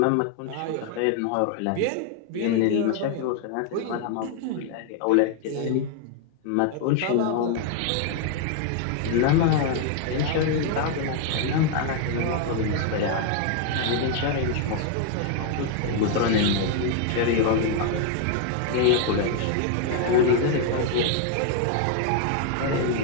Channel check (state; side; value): different; both; correlation 0.00